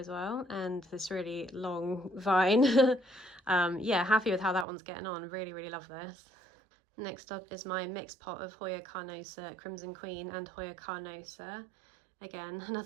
well. And this really long vine. Yeah, happy with how that one's getting on. Really, really love this. Next up is my mixed pot of Hoya carnosa Crimson Queen and Hoya carnosa. Again,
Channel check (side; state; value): left; drops out; at 4.7 s